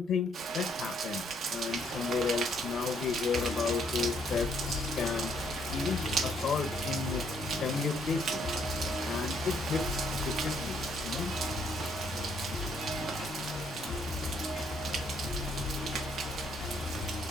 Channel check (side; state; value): both; normal; correlation 0.69